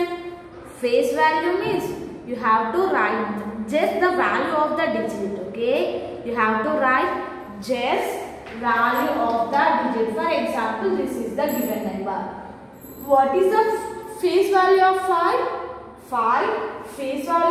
Face value means you have to write just the value of the digit. Okay, you have to write just value of the digit. For example, this is the given number. What is the face value of 5? 5. Face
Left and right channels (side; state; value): both; identical; correlation 1.00